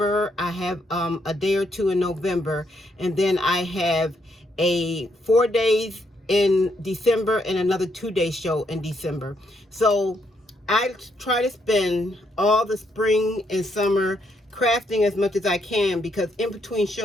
I have a day or two in November, and then I have 4 days in December and another 2-day show in December. So I try to spend all the spring and summer crafting as much as I can, because in between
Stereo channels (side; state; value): both; normal; correlation 0.75